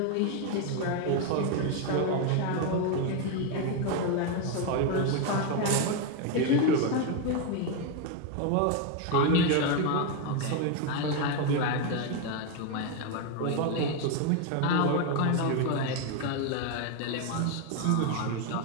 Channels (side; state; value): both; different; correlation 0.02